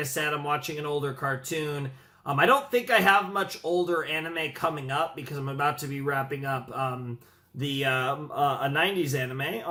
said, I'm watching an older cartoon. I don't think I have much older anime coming up because I'm about to be wrapping up a 90s anime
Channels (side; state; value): both; identical; correlation 1.00